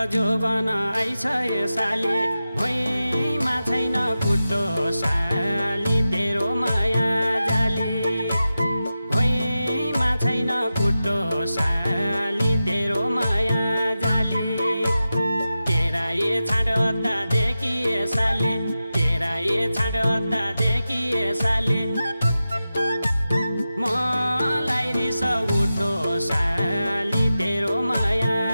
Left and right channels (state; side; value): inverted; both; correlation -0.93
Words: जोबन आइछ यो साले भुइँमा छैन खुट्टो साली तेरो माया जाली भुइँमा छैन खुट्टो साली तेरो माया जाली तेरा ये छाडोता देखिए साले तेरा ये छाडोता देखिए साले मलाई रिस उठो साली तेरो माया